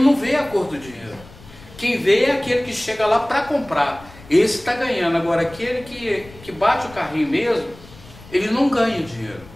não vê a cor do dinheiro. Quem vê é aquele que chega lá para comprar. Esse está ganhando. Agora, aquele que bate o carrinho mesmo, ele não ganha dinheiro.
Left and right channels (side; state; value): left; noise; rumble, 21 dB below the sound